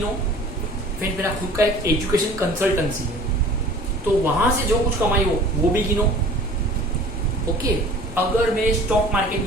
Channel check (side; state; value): both; normal; correlation 0.46